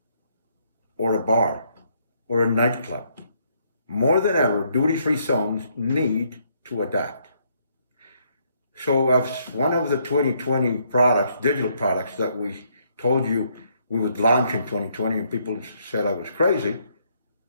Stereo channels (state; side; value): inverted; both; correlation -0.71